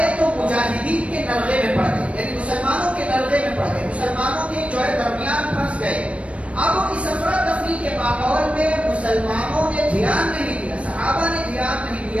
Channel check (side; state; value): left; late; 0.063 ms